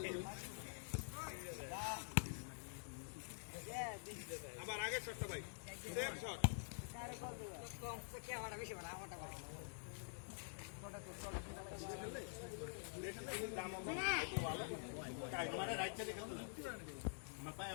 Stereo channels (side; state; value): right; silent; digital silence